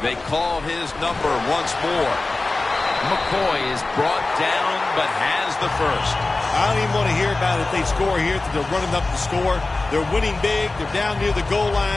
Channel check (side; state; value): right; quieter; 3.3 dB